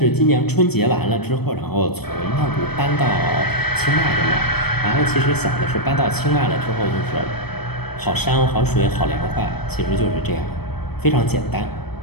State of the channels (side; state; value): right; late; 0.97 ms